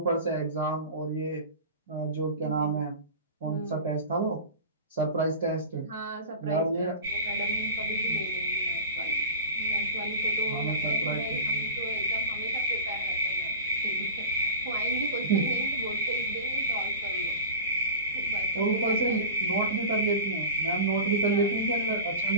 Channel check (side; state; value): both; inverted; correlation -0.31